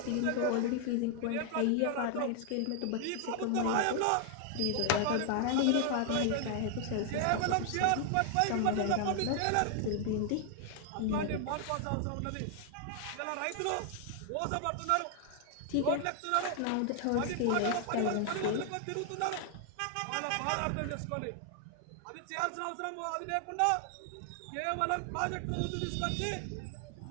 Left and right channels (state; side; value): different; both; correlation 0.00